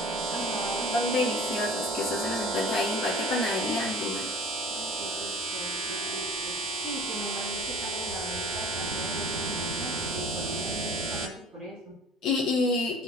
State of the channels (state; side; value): normal; both; correlation 0.45